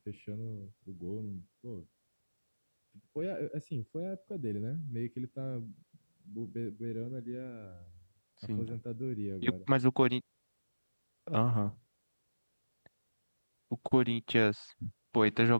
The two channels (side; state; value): both; inverted; correlation -1.00